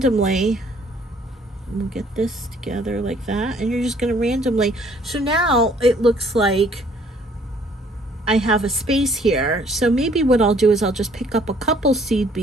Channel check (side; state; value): both; normal; correlation 0.60